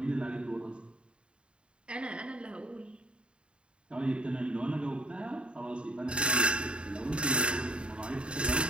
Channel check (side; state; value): left; late; 0.054 ms